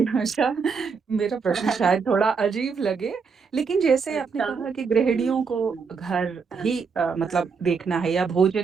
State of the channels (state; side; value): quieter; left; 5.5 dB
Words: अच्छा, मेरा प्रश्न शायद थोड़ा अजीब लगे, लेकिन जैसे आपने अच्छा। कहा कि हुँ, गृहिणियों को हुँ, घर हाँ, ही हाँ, मतलब देखना है या